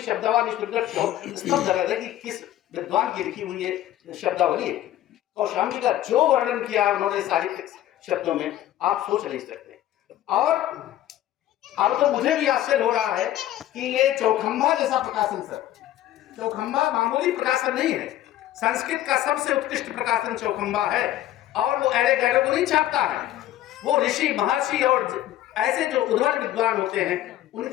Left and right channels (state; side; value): quieter; right; 13.2 dB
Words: कि किस विद्वान की लिखी हुई है शब्दावली है। कौशाम्बी का जो वर्णन किया उन्होंने साहित्यिक शब्दों में, आप सोच नहीं सकते। और अब तो मुझे भी आश्चर्य हो रहा है कि ये चौखंबा जैसा प्रकाशन, सर चौखंबा मामूली प्रकाशन नहीं है, संस्कृत का सबसे उत्कृष्ट प्रकाशन चौखंबा है, और वो एड़े गैड़े को नहीं छापता है, वो ऋषि महर्षि और ऐसे जो उद्भट विद्वान होते हैं